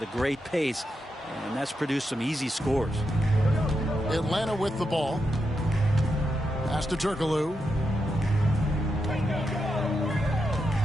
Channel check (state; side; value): normal; both; correlation 0.85